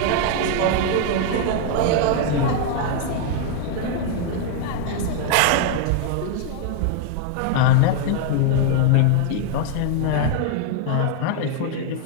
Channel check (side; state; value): both; different; correlation 0.00